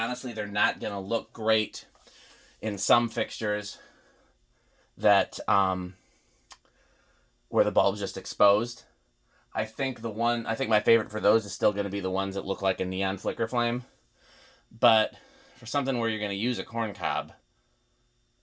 they're not going to look great in some fixtures that, where the bulb's just exposed. I think my favorite for those is still going to be the ones that look like a neon flicker flame. But for something where you're going to use a corn cob,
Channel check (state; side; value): identical; both; correlation 1.00